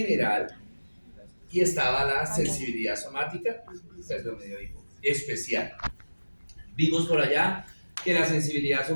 y estaba la sensibilidad somática, perdón, me dio hipo, especial. Vimos por allá que la sensibilidad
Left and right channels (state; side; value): inverted; both; correlation -1.00